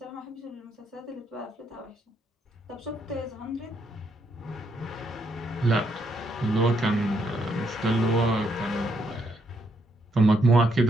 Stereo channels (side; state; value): both; normal; correlation 0.76